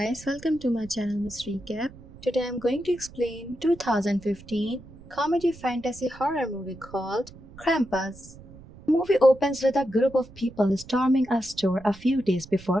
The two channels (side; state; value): right; noise; rumble, 20 dB below the sound